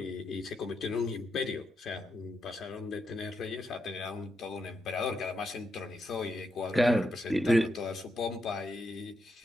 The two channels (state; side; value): normal; both; correlation 0.82